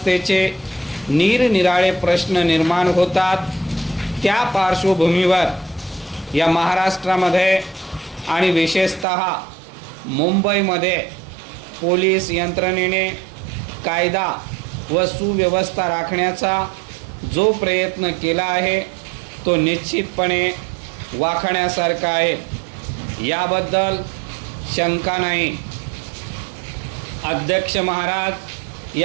निरनिराळे प्रश्न निर्माण होतात। त्या पार्श्वभूमीवर या महाराष्ट्रामध्ये आणि विशेषतः मुंबईमध्ये पोलीस यंत्रणेने कायदा व सुव्यवस्था राखण्याचा जो प्रयत्न केला आहे तो निश्चितपणे वाखाणण्यासारखा आहे, याबद्दल शंका नाही। अध्यक्ष महाराज,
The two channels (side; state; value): left; drops out; at 9.1 s